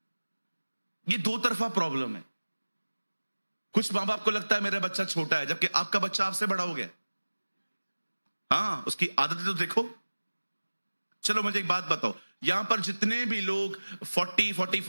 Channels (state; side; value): inverted; both; correlation -1.00